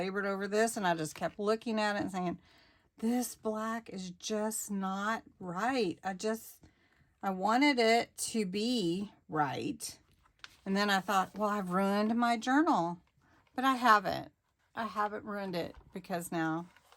over this, and I just kept looking at it and saying, this black is just not right. I wanted it to be right. And then I thought, well, I've ruined my journal. But I haven't. I haven't ruined it, because now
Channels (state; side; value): identical; both; correlation 1.00